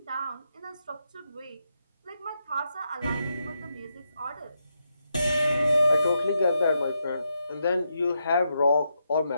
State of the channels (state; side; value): inverted; both; correlation -0.83